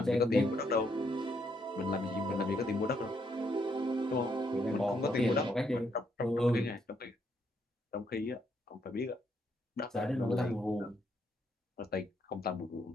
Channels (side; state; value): both; normal; correlation 0.74